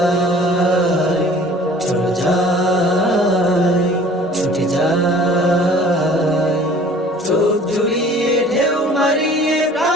চলো যাই, ছুটে যাই। চোখ জুড়িয়ে ঢেউ মারিয়ে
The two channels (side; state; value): both; normal; correlation 0.49